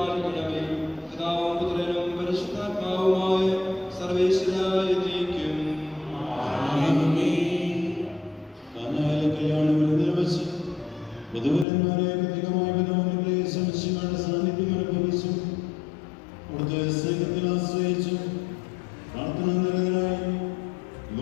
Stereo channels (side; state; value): right; drops out; at 11.7 s